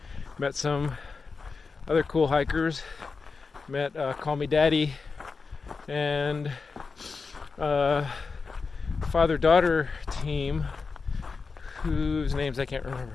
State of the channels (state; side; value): quieter; right; 4.7 dB